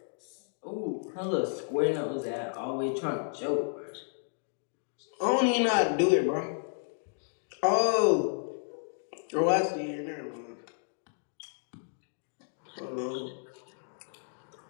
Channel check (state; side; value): silent; right; digital silence